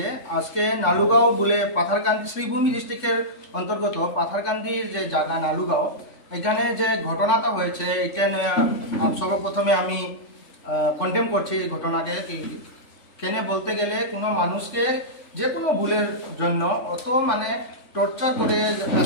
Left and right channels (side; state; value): right; late; 3.5 ms